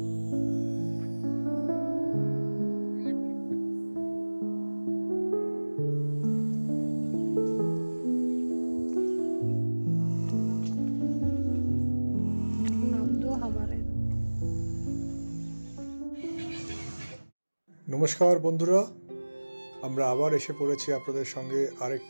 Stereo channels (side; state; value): both; inverted; correlation -1.00